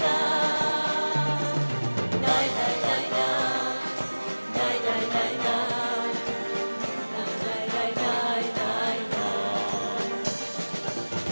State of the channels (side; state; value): both; inverted; correlation -1.00